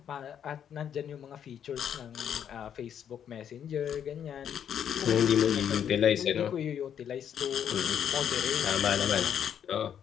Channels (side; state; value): right; quieter; 8.9 dB